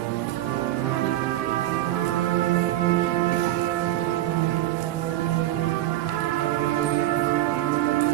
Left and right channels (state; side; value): quieter; left; 14.9 dB